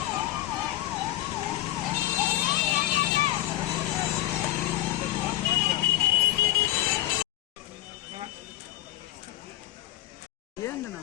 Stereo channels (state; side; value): quieter; right; 15.2 dB